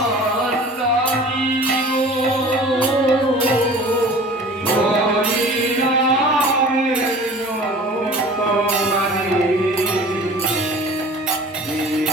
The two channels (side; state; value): both; normal; correlation 0.43